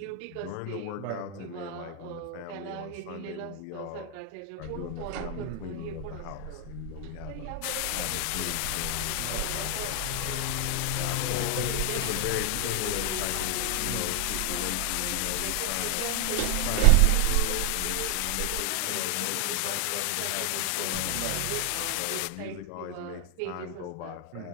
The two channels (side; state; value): both; different; correlation 0.00